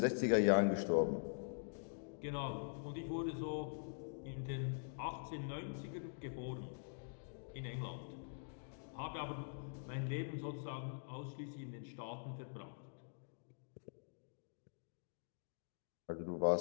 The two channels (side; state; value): right; silent; digital silence